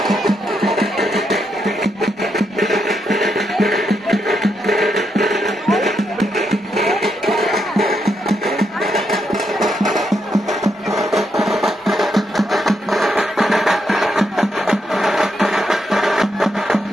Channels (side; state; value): both; normal; correlation 0.80